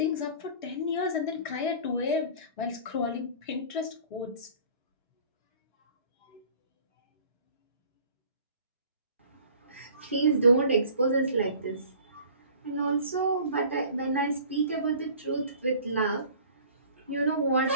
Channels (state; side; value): inverted; both; correlation -0.47